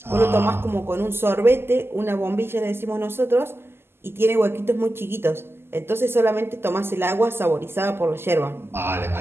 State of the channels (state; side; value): late; left; 0.12 ms